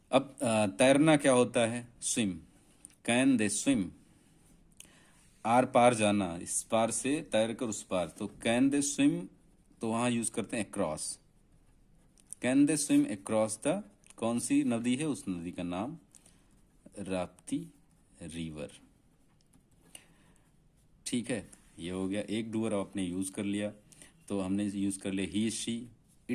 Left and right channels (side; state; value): both; identical; correlation 1.00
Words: अब तैरना क्या होता है, स्विम, कैन दे स्विम। आर पार जाना, इस पार से तैर कर उस पार, तो कैन दे स्विम, तो वहां यूज करते हैं across, can they swim across the, कौन सी नदी है, उस नदी का नाम राप्ती रिवर, ठीक है। ये हो गया एक डूअर आपने यूज कर लिया। तो हमने यूज कर लिया ही, शी,